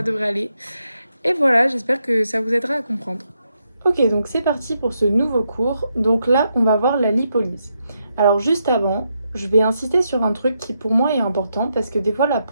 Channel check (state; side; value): inverted; both; correlation -0.81